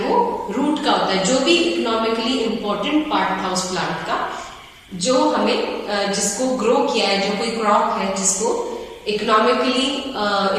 रूट का होता है, जो भी इकोनॉमिकली इंपॉर्टेंट पार्ट था उस प्लांट का, जो हमें जिसको ग्रो किया है, जो कोई क्रॉप है जिसको इकोनॉमिकली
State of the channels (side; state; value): both; identical; correlation 1.00